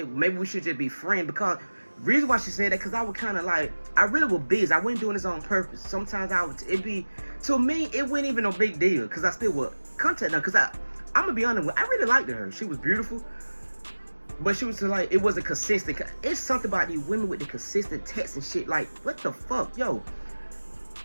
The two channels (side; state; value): both; inverted; correlation -1.00